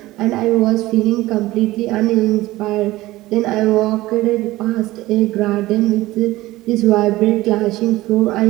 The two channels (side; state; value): left; quieter; 17.7 dB